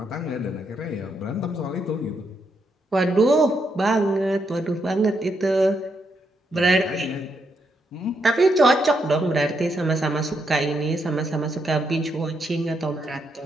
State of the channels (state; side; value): normal; both; correlation 0.79